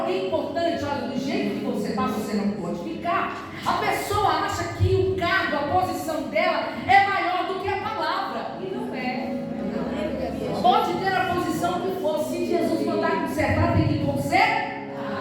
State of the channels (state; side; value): identical; both; correlation 1.00